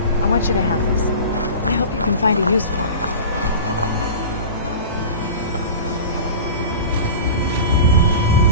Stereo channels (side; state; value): both; inverted; correlation -0.35